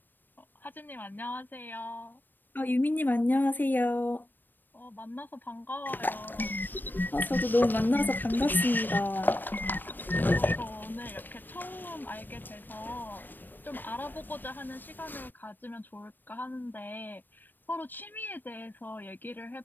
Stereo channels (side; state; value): right; late; 0.092 ms